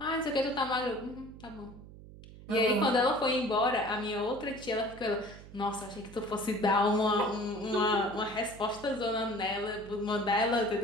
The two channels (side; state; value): right; noise; hum, 17 dB below the sound